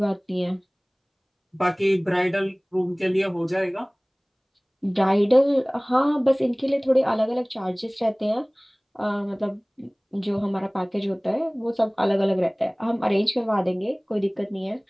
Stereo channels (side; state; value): both; identical; correlation 1.00